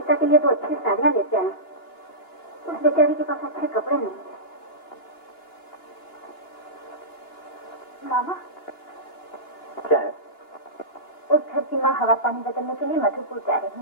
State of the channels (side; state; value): right; late; 2.8 ms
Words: के लिए 2 अच्छी साड़ियाँ लेते आए। उस बेचारी के पास अच्छे कपड़े नहीं है। मामा, क्या है? उस घर की माँ हवा पानी बदलने के लिए मधुपुर जा रही